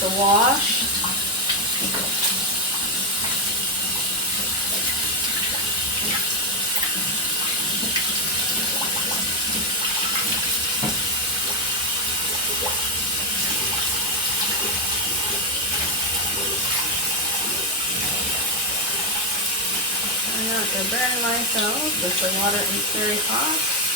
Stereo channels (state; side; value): normal; both; correlation 0.06